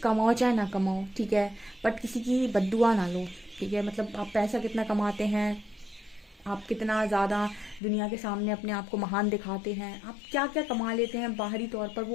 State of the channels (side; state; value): right; drops out; at 7.8 s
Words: चाहे ना कमाओ, ठीक है, बट किसी की बद्दुआ ना लो। ठीक है, मतलब आप पैसा कितना कमाते हैं, आप कितना ज़्यादा दुनिया के सामने अपने आप को महान दिखाते हैं, आप क्या क्या कमा लेते हैं बाहरी तौर पर,